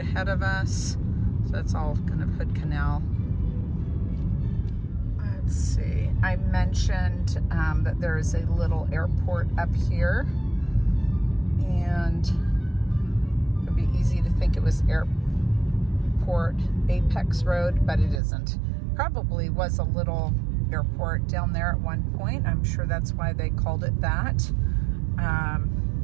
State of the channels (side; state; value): left; drops out; at 18.2 s